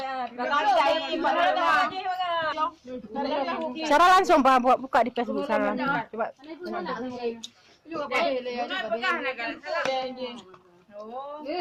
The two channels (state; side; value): identical; both; correlation 1.00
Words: lah. Kalau cari Cara langsung Pak buka di Facebook sana. Coba. pegang nak kan. Oh,